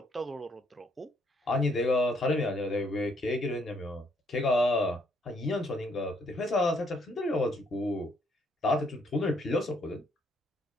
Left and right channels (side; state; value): both; normal; correlation 0.69